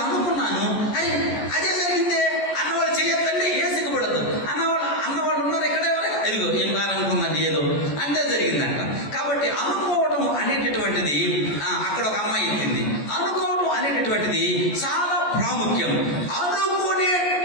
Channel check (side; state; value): right; late; 14 ms